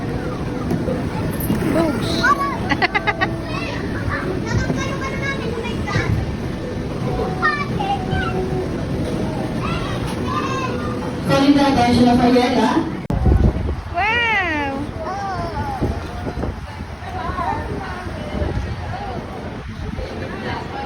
Boogs. Calling the attention of Ayala. Wow!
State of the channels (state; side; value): identical; both; correlation 1.00